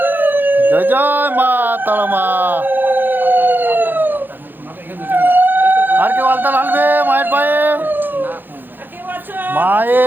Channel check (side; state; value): left; late; 0.092 ms